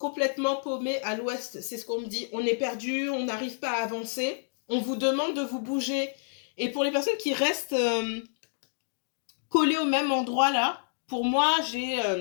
paumé à l'ouest, c'est ce qu'on me dit. On est perdu, on n'arrive pas à avancer. On vous demande de vous bouger. Et pour les personnes qui restent collées au même endroit, là, pour moi,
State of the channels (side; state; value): right; silent; digital silence